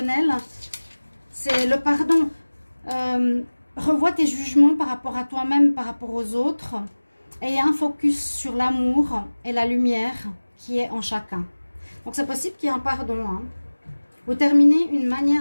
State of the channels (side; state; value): both; inverted; correlation -1.00